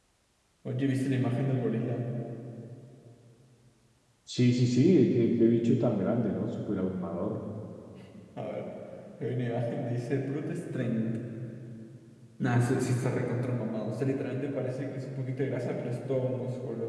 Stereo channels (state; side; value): identical; both; correlation 1.00